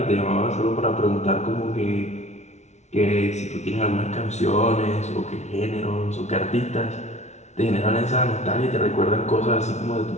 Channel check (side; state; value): right; late; 0.32 ms